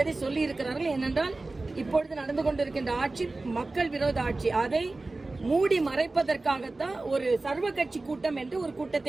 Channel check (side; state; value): left; quieter; 3.2 dB